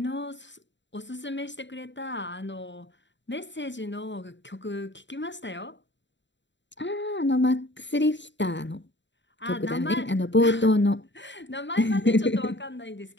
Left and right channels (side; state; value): right; late; 0.53 ms